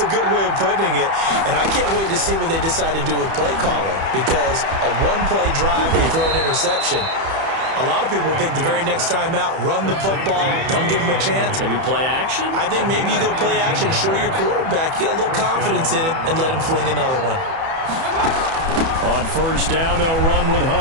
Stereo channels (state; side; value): late; left; 31 ms